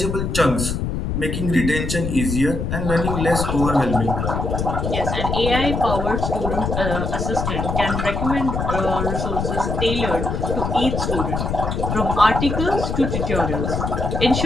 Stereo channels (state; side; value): noise; left; rumble, 2 dB below the sound